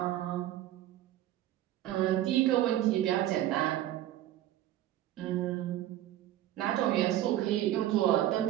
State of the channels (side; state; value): left; quieter; 13.4 dB